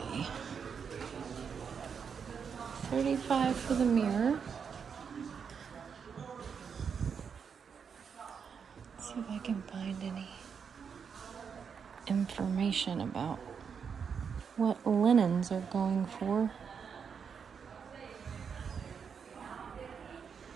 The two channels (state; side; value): quieter; left; 6.6 dB